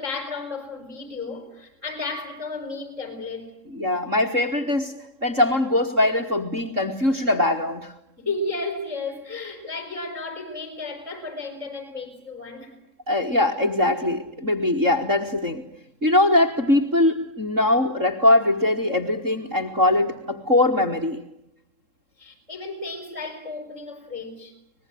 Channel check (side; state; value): left; late; 3.7 ms